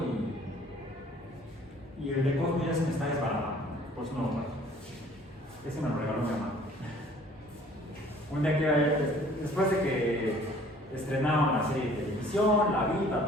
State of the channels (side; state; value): both; normal; correlation 0.54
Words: y el de Cosmo ya se me está desbaratando. Por eso no lo traje. Ese me lo regaló mi mamá. Un día que, después de que estrenaron la serie de televisión, la vi,